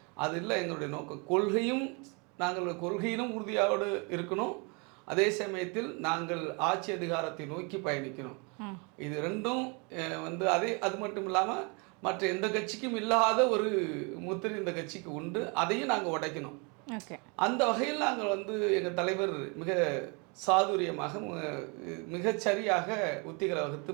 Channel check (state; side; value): quieter; left; 32.2 dB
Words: அது இல்லை எங்களுடைய நோக்கம். நாங்கள் கொள்கையிலும் உறுதியோடு இருக்கணும், அதே சமயத்தில் நாங்கள் ஆட்சி அதிகாரத்தை நோக்கி பயணிக்கணும். இது ரெண்டும் அது மட்டும் இல்லாமல் மற்ற எந்த கட்சிக்கும் இல்லாத ஒரு முத்திரை இந்த கட்சிக்கு உண்டு. அதையும் நாங்கள் உடைக்கணும். அந்த வகையில் நாங்கள் எங்கள் தலைவர் மிக சாதுரியமாக மிகச்சரியாக உத்திகளை